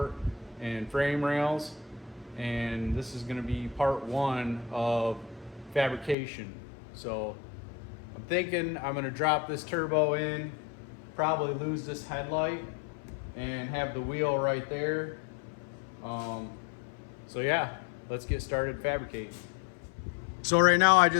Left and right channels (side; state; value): right; drops out; at 6.2 s